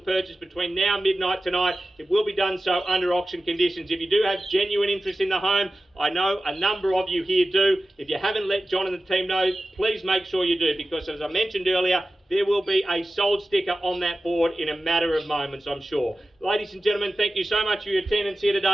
between now and midnight tonight, it will be done so under auction conditions. If you do have genuine interest in the home, I know a number of you here do. If you haven't let John and the team know, please make sure you do, because as I mentioned earlier, there will be a sold sticker on that board in a matter of moments, I'm sure. Ladies and gentlemen, thank you so much for your attendance here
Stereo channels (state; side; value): normal; both; correlation 0.94